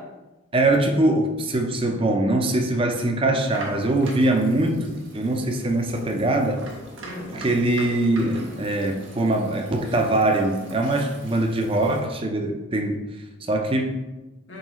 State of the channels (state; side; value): normal; both; correlation 0.52